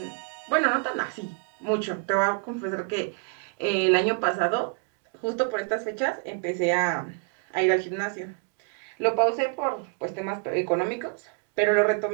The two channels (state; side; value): quieter; left; 36.4 dB